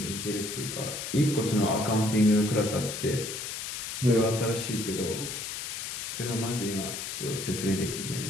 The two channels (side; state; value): left; noise; hiss, 6 dB below the sound